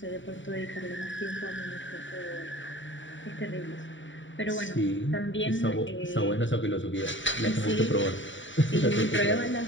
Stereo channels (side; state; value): right; late; 0.55 ms